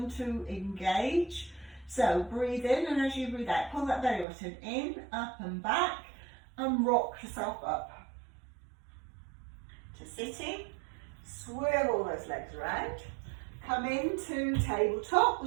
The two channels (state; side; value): drops out; left; at 4.2 s